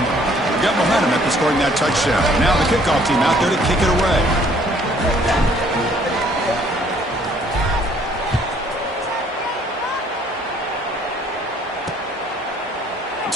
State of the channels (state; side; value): normal; both; correlation 0.61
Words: We've got momentum after scoring that touchdown. Now the kickoff team out there to kick it away.